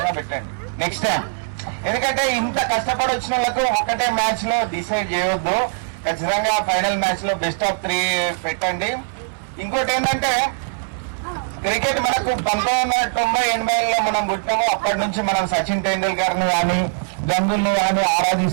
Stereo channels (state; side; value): silent; left; 64 dB below the other